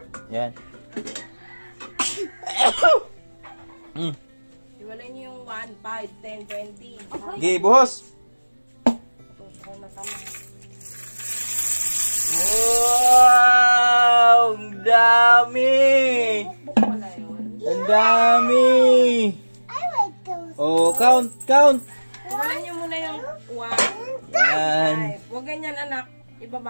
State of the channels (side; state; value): both; inverted; correlation -1.00